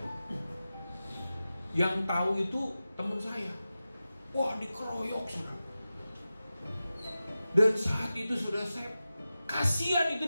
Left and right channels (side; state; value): both; inverted; correlation -0.94